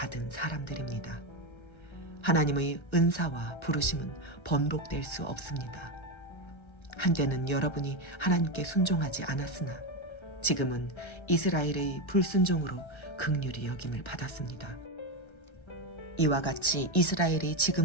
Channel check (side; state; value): right; late; 1.3 ms